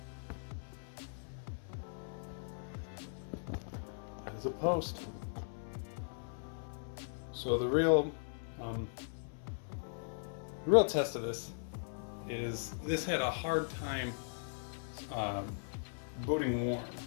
That is a post. So the real test of this is this had a hard time booting warm.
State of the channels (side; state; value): right; silent; 52 dB below the other